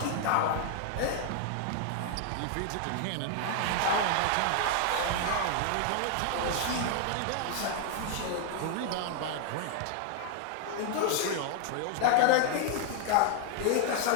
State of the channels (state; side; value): different; both; correlation 0.00